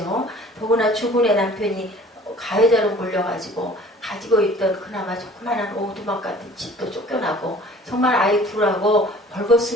더구나 주군의 남편이 가해자로 몰려가지고 가지고 있던 그나마 조그만한 오두막 같은 집도 쫓겨나고 정말 아이 둘하고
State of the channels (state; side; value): normal; both; correlation 0.50